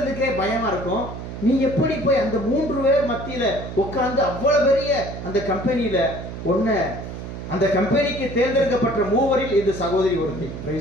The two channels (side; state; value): right; noise; hum, 9 dB below the sound